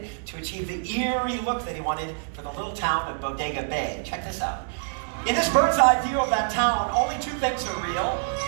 to achieve the eerie look that he wanted for the little town of Bodega Bay. Check this out. In this bird's eye view of that town, only two things are real:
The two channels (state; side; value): silent; left; 61 dB below the other